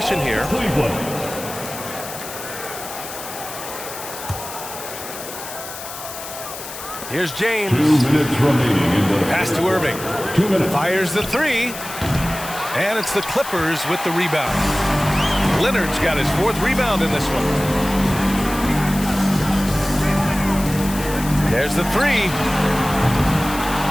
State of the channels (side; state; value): left; noise; hiss, 11 dB below the sound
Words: here. Here's James. 2 minutes remaining in the pass to Irving. 2 minutes. Fires the 3. And it's the Clippers with the rebound. Leonard's got his 4th rebound in this one. There's the 3.